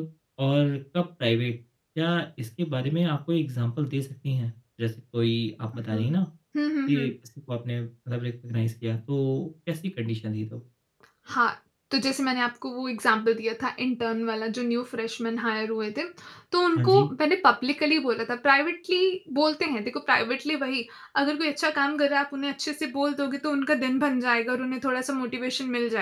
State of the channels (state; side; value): identical; both; correlation 1.00